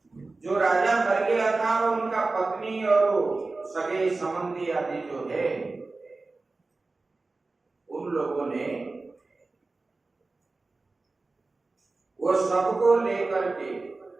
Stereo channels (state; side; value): quieter; left; 3.5 dB